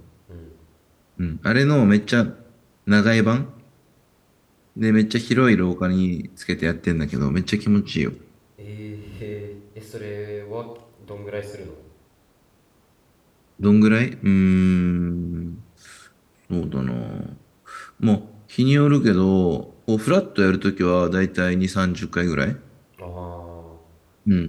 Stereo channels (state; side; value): identical; both; correlation 1.00